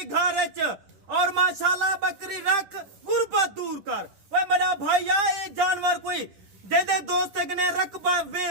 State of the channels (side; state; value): left; late; 10 ms